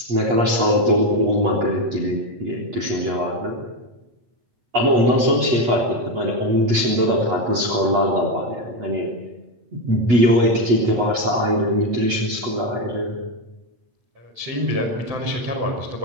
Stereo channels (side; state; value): left; late; 8.3 ms